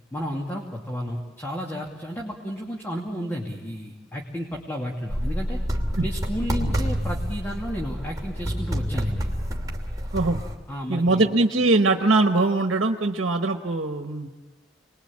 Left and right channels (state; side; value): normal; both; correlation 0.60